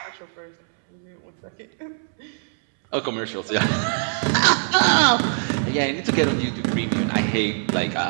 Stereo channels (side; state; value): left; silent; 64 dB below the other